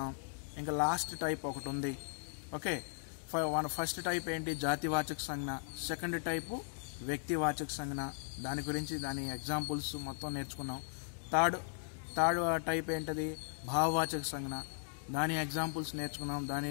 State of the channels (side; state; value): right; silent; digital silence